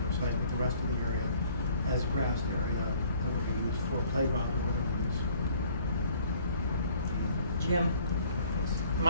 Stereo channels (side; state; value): both; inverted; correlation -0.58